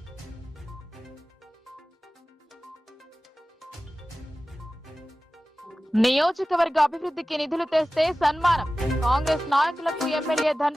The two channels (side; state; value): both; normal; correlation 0.96